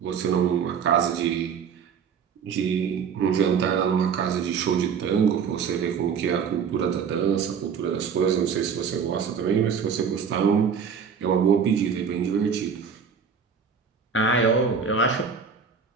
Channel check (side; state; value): left; quieter; 6.6 dB